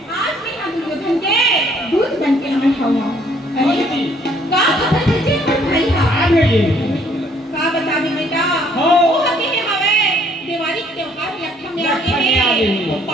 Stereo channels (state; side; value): normal; both; correlation 0.63